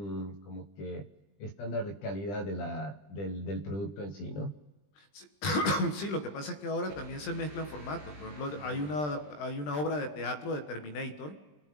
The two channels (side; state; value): right; late; 20 ms